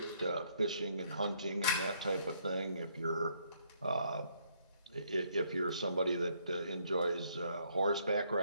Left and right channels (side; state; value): both; inverted; correlation -0.69